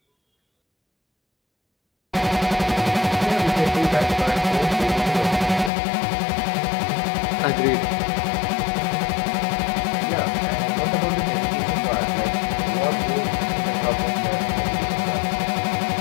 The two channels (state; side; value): drops out; right; at 5.7 s